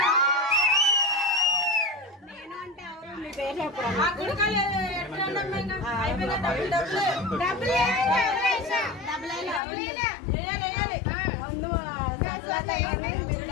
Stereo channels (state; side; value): drops out; right; at 9.6 s